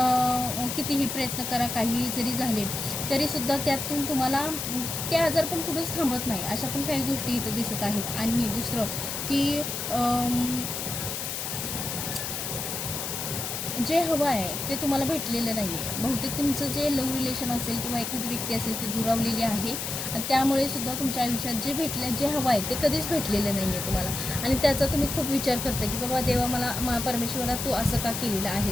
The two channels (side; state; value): left; noise; hiss, 4 dB below the sound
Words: कितीही प्रयत्न करा, काही जरी झाले तरीसुद्धा त्यातून तुम्हाला ते आजार पण कुठंच थांबत नाही. अशा पण काही गोष्टी इथं दिसत आहेत. आणि दुसरं की जे हवं आहे ते तुम्हाला भेटलेलं नाही आहे. बहुतेक तुमचं जे लव्ह रिलेशन असेल किंवा एखादी व्यक्ती असेल ती दुरावलेली आहे आणि त्यामुळे सुद्धा तुमच्या आयुष्यात जे हवं आहे ते कधीच भेटलेलं नाही आहे तुम्हाला. आणि त्याचा तुम्ही खूप विचार करता की बाबा देवा मला परमेश्वरा तू असं का केलेलं